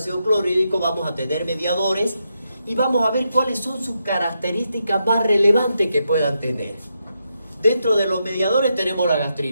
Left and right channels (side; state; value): both; inverted; correlation -0.83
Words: clorhídrico, vamos a tener mediadores y vamos a ver cuáles son sus características más relevantes que puedan tener. Dentro de los mediadores tenemos la